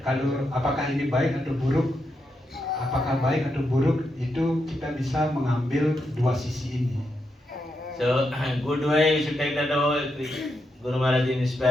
kalau apakah ini baik atau buruk, apakah baik atau buruk itu kita bisa mengambil dua sisi ini. So good way you should take that. Oh, Guru Maharaj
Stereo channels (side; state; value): both; normal; correlation 0.83